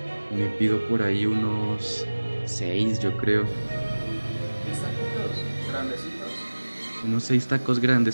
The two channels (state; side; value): inverted; both; correlation -1.00